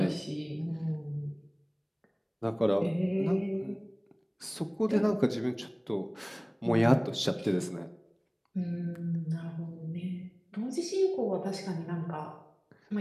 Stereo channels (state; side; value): identical; both; correlation 1.00